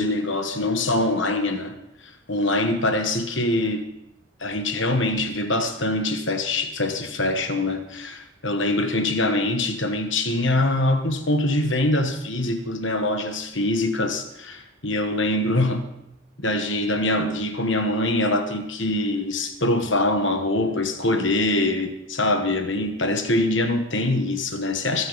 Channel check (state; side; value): normal; both; correlation 0.22